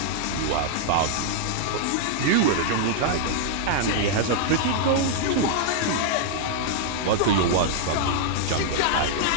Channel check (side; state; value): both; different; correlation -0.01